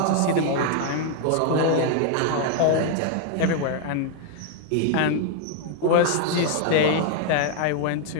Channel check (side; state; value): both; different; correlation 0.00